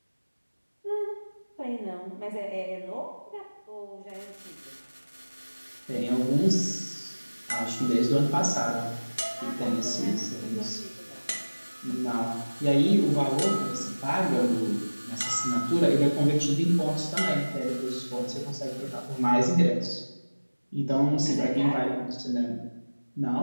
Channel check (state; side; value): inverted; both; correlation -1.00